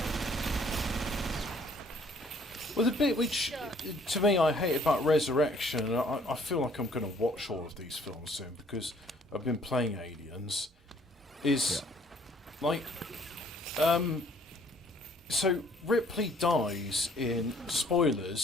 Well, the bit which, to me, I hate about Resurrection, and I feel like I'm going to watch all of these films soon because I've been playing Aliens, is like, so Ripley dies in,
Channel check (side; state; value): both; normal; correlation 0.60